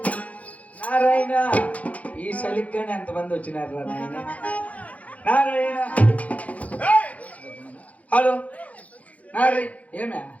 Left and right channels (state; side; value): late; right; 0.069 ms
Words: నారాయణ ఈ చలిగ్గానే ఎంతమంది వచ్చినారు రా నాయన. నారాయణ హలో నారాయణ ఏమే